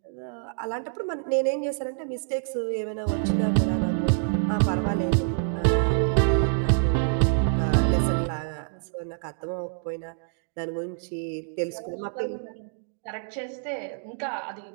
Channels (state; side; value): silent; left; digital silence